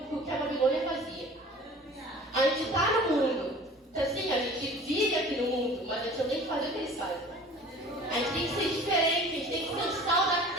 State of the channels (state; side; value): normal; both; correlation 0.45